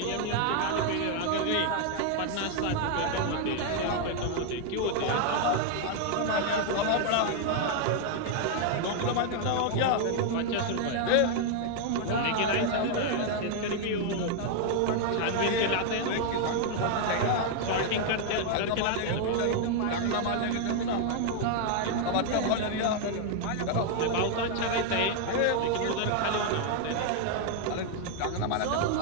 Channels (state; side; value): different; both; correlation 0.00